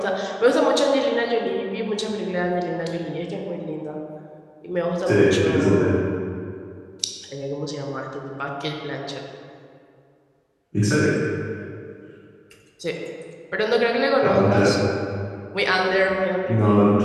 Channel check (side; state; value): both; identical; correlation 1.00